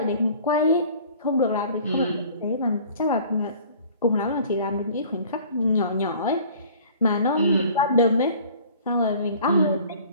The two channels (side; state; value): both; inverted; correlation -0.49